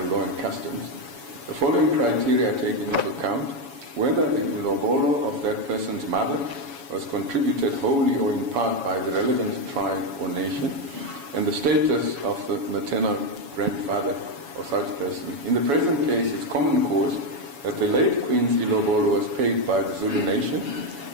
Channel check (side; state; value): left; late; 7.1 ms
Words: law and customs. The following criteria are taken into account: whether the ilobolo of that person's mother was contributed wholly or in part by the relevant tribe or nation, and the status of the maternal grandfather of such person. In the present case, it's common cause that the late Queen's ilobolo was paid by the Zulu nation,